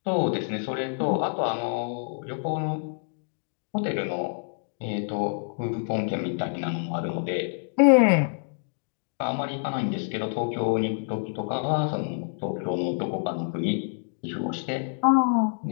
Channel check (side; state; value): right; silent; digital silence